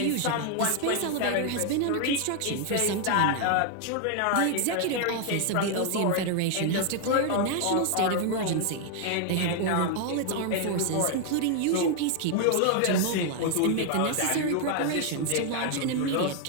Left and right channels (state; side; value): different; both; correlation 0.00